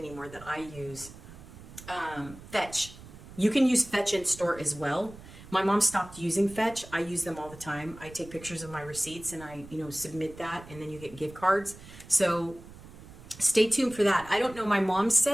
that I use. Fetch. You can use Fetch in store as well. My mom stopped using Fetch. I use them all the time. I take pictures of my receipts and I, submit that, and then you get gift cards. So stay tuned for that. I don't know. My mom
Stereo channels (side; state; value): right; noise; rumble, 17 dB below the sound